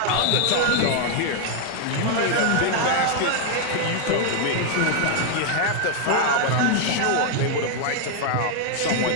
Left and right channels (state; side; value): different; both; correlation 0.00